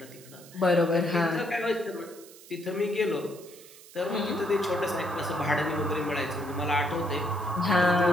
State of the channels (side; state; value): right; noise; hiss, 20 dB below the sound